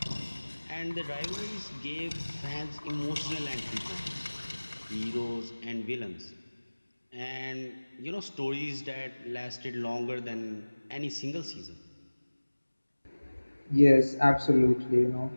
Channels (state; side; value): inverted; both; correlation -1.00